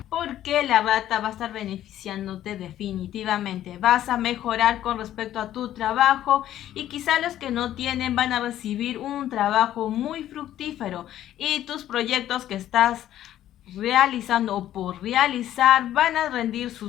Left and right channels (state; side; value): quieter; right; 12.3 dB